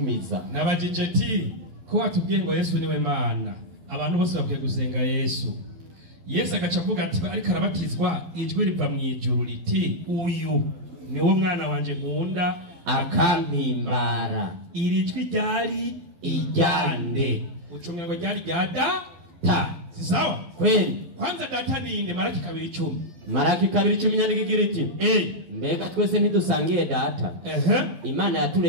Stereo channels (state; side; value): late; left; 12 ms